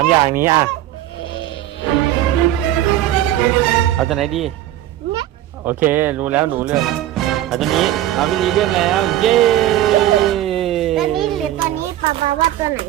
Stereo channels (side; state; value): left; quieter; 13.2 dB